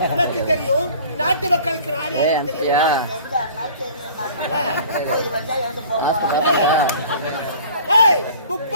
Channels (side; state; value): both; inverted; correlation -0.47